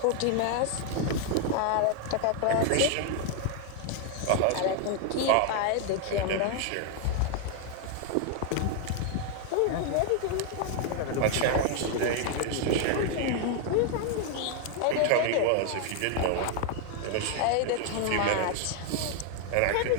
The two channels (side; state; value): both; different; correlation 0.00